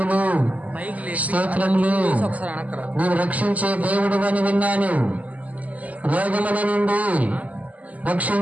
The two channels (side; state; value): left; late; 0.074 ms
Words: స్తోత్రములు, నువ్వు రక్షించే దేవుడు అని విన్నాను. రోగముల నుండి